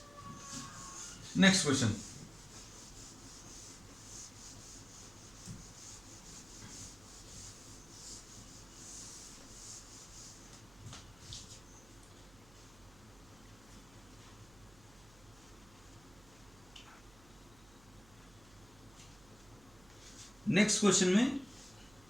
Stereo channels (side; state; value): right; noise; hum, 23 dB below the sound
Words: नेक्स्ट क्वेश्चन, नेक्स्ट क्वेश्चन में